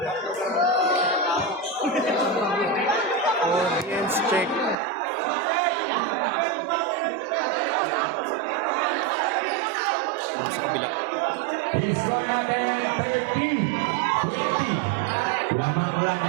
Audience check. I-score natin 30-20. Lamang lang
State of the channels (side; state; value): left; drops out; at 4.8 s